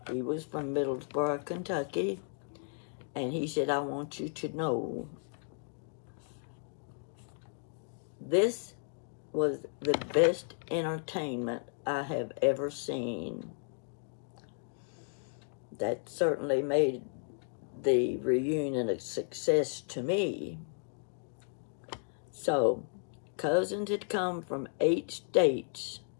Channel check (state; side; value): silent; right; 55 dB below the other